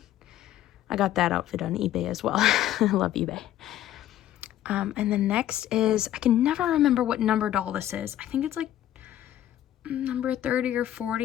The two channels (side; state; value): right; quieter; 12.4 dB